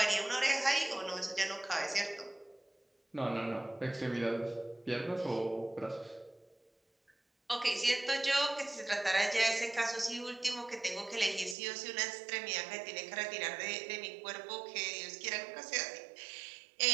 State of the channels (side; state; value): left; drops out; at 11.6 s